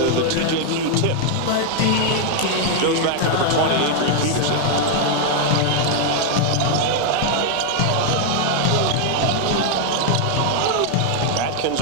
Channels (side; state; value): both; different; correlation 0.00